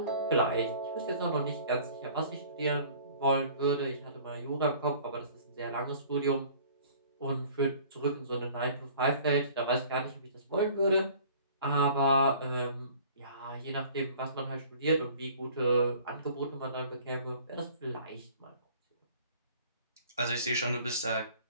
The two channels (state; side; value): inverted; both; correlation -0.50